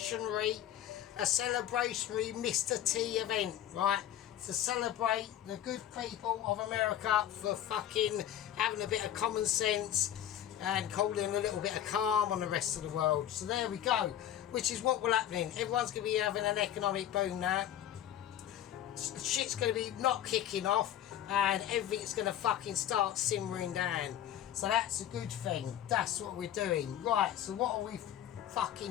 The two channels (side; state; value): right; quieter; 11.1 dB